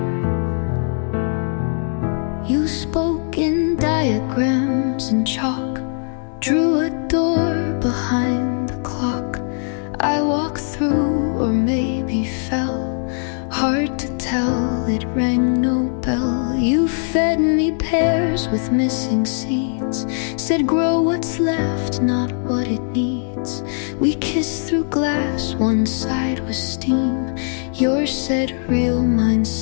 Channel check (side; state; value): right; silent; 58 dB below the other